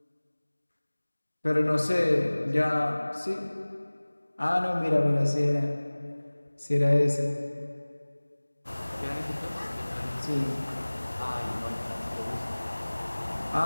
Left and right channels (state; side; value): inverted; both; correlation -1.00